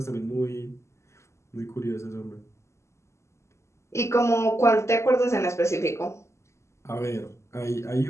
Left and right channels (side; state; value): right; late; 0.13 ms